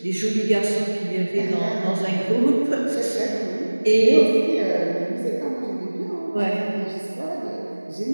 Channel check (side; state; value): both; inverted; correlation -1.00